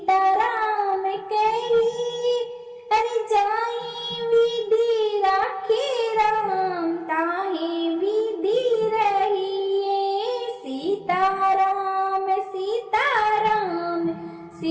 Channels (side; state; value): both; identical; correlation 1.00